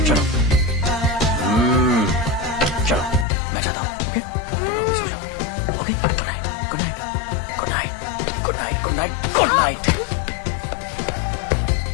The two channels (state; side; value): drops out; right; at 3.2 s